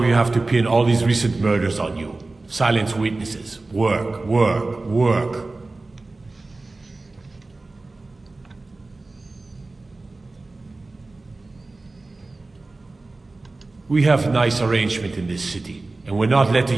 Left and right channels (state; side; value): quieter; left; 3.3 dB